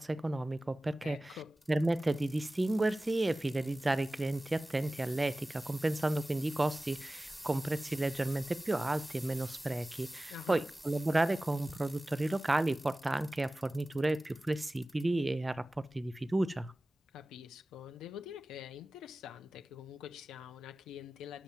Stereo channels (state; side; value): normal; both; correlation 0.97